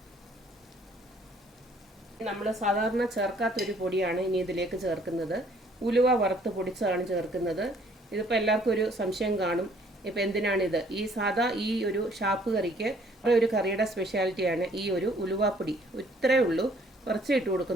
നമ്മൾ സാധാരണ ചേർക്കാത്തൊരു പൊടിയാണ് ഇനി ഇതിലേക്ക് ചേർക്കുന്നത്. ഉലുവ വറുത്ത് പൊടിച്ചതാണ് ചേർക്കുന്നത്. ഇതിപ്പോൾ എല്ലാവർക്കും ഒരു സംശയം കാണും, ഇപ്പോൾ എന്തിനാണിത്? ഈ ഒരു ഷാപ്പ് കറിക്ക് ഒരു കറിയുടെ സ്പെഷ്യാലിറ്റിയാണ് ഈ ഒരു ഉലുവാപ്പൊടി. ഇത്രയേ ഉള്ളൂ, കുറച്ച് ഇട്ട്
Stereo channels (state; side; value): normal; both; correlation 0.61